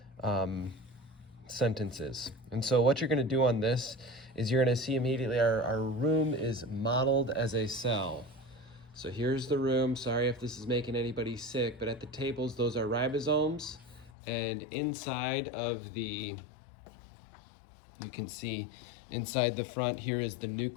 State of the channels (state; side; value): drops out; right; at 14.1 s